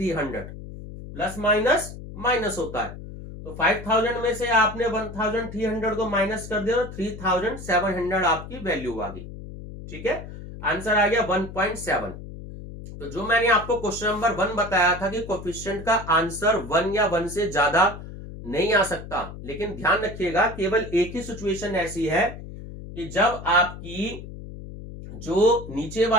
प्लस माइनस माइनस होता है। तो 5000 में से आपने 1300 को माइनस कर दिया, 3700 आपकी वैल्यू आ गई, ठीक है, आंसर आ गया 1.7। तो जो मैंने आपको क्वेश्चन नंबर 1 बताया था कि कोफिशिएंट का आंसर 1 या 1 से ज्यादा नहीं आ सकता, लेकिन ध्यान रखिएगा केवल एक ही सिचुएशन ऐसी है कि जब आपकी जो नीचे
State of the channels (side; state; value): left; noise; hum, 12 dB below the sound